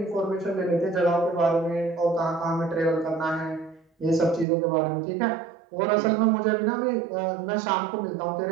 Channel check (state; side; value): drops out; left; at 4.5 s